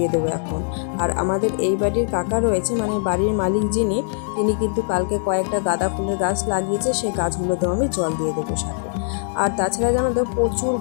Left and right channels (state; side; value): silent; right; 64 dB below the other